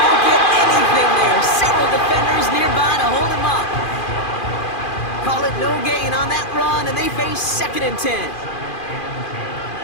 get anything there. Several defenders nearby to hold him up. Call it no gain on that run, and they face 2nd and 10.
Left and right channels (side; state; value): right; late; 2.4 ms